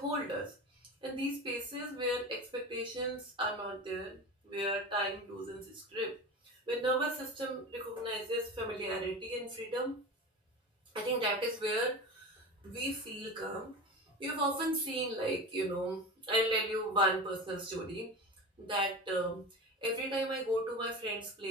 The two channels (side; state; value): both; normal; correlation 0.29